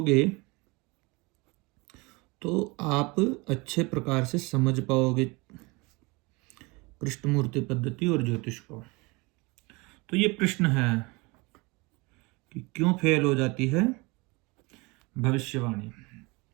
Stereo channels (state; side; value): quieter; left; 26.0 dB